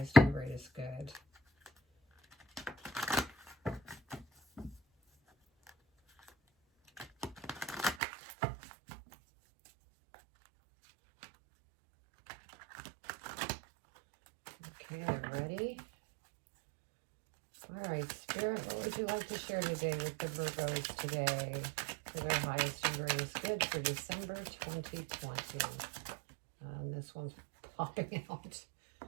and greatest good? Okay, they're ready. All right, Spirit, what would you like to share today with the Virgos today for their highest and greatest good for December 2020? And this one's popping out.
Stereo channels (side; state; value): left; drops out; at 8.0 s